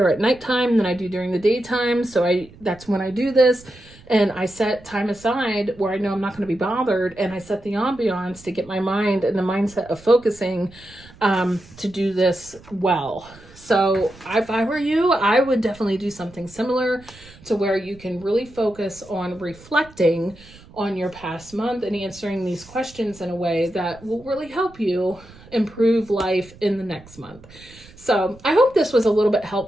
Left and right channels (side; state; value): right; noise; rumble, 22 dB below the sound